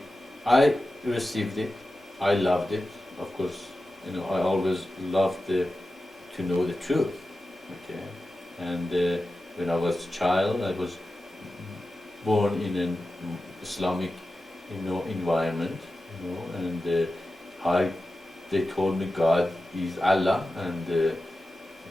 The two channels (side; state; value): both; normal; correlation 0.93